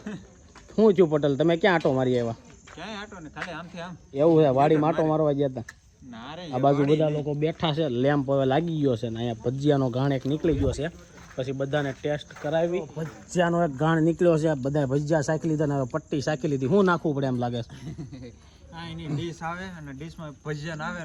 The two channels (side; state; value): both; identical; correlation 1.00